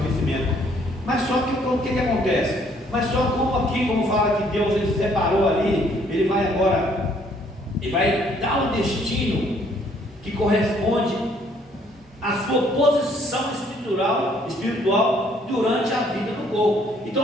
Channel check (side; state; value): both; normal; correlation 0.64